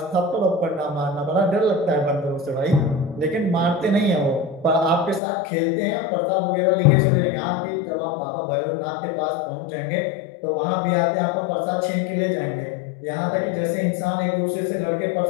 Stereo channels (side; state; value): right; drops out; at 5.2 s